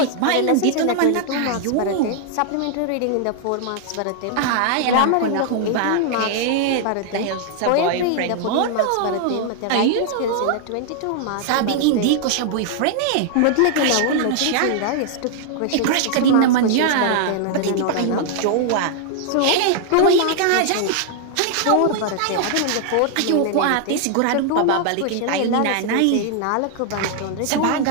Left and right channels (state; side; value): different; both; correlation 0.00